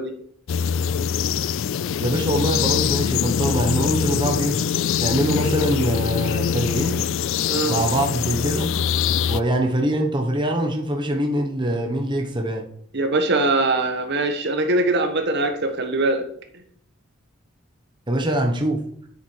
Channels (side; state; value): both; normal; correlation 0.41